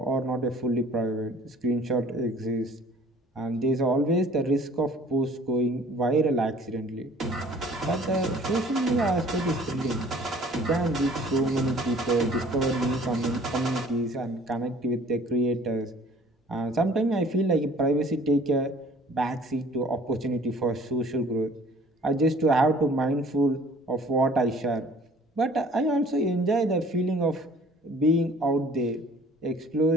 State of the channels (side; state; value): both; normal; correlation 0.52